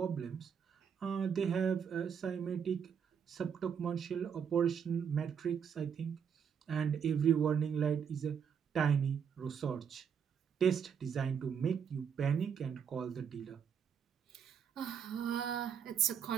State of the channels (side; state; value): left; quieter; 7.4 dB